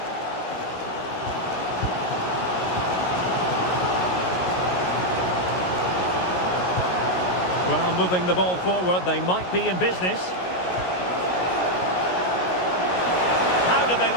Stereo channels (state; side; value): late; right; 17 ms